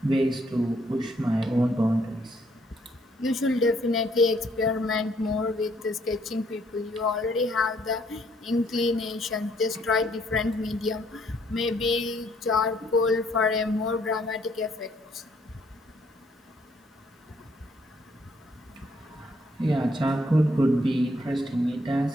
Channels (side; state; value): both; normal; correlation 0.68